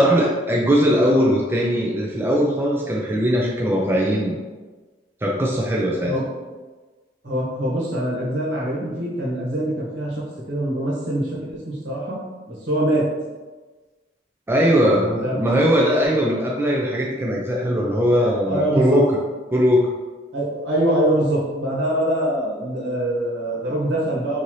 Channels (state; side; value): normal; both; correlation 0.61